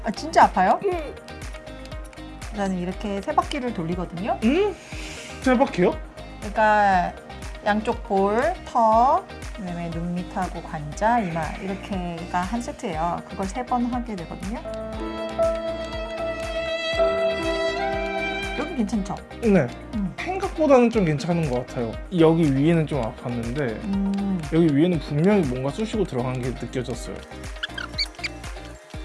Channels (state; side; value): identical; both; correlation 1.00